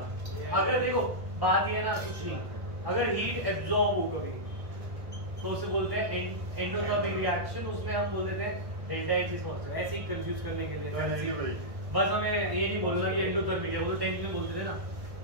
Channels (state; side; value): late; left; 1.2 ms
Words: अगर देखो बात ये ना कुछ नहीं, अगर हीट एब्जॉर्ब हो कभी तो उसे बोलते हैं एंडोथर्मिक रिएक्शन, उसमें हम बोल देते हैं डेल्टा एच इज पॉजिटिव। ऐसे ही कंफ्यूज करने के लिए बस हमें ये नहीं बोलना कि एंडोथर्मिक है, वो तो 10th में बोलते थे ना,